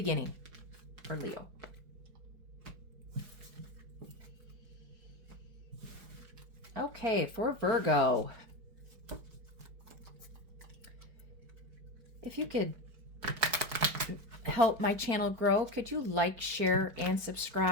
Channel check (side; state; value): left; late; 4.4 ms